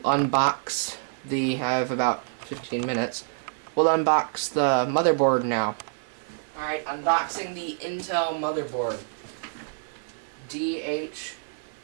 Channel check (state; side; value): silent; left; digital silence